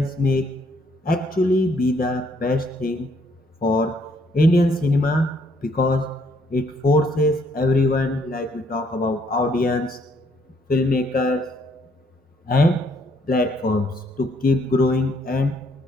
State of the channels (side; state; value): both; normal; correlation 0.68